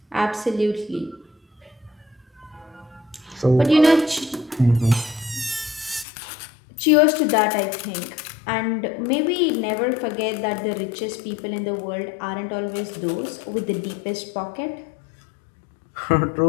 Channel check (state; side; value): drops out; right; at 6.1 s